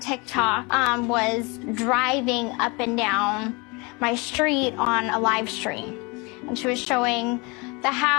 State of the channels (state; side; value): quieter; right; 28.2 dB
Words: was driving up and down my street on a live stream. And she was showing the